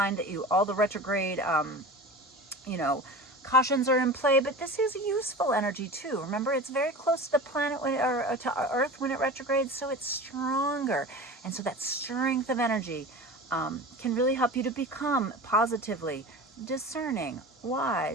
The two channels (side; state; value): both; normal; correlation 0.33